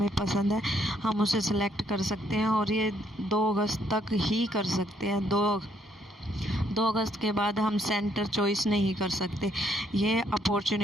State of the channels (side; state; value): both; normal; correlation 0.70